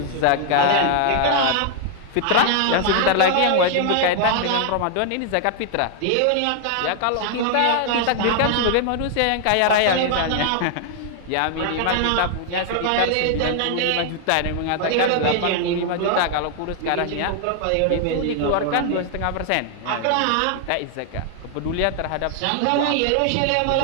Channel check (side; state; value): both; different; correlation 0.00